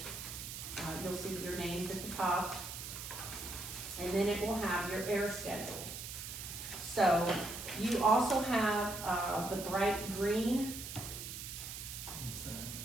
you'll see your names at the top, and then it will have your air schedule. So you also have the bright green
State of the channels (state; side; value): noise; right; hiss, 8 dB below the sound